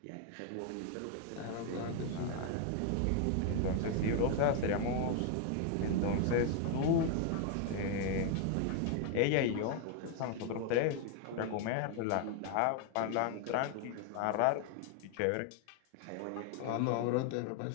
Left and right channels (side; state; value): both; different; correlation 0.01